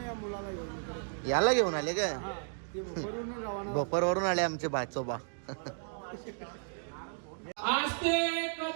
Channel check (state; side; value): silent; left; digital silence